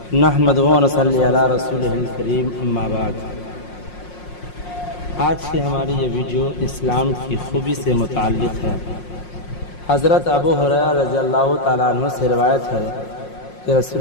نحمد و نصلی علی رسولہ الکریم، اما بعد۔ آج کی ہماری یہ ویڈیو اسلام کی خوبی سے متعلق ہے۔ حضرت ابو ہریرہ رضی اللہ تعالیٰ عنہ سے روایت ہے کہ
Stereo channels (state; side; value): late; right; 5.6 ms